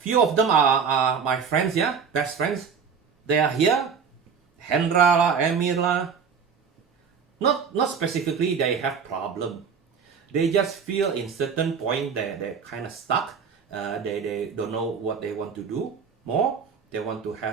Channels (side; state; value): left; quieter; 6.3 dB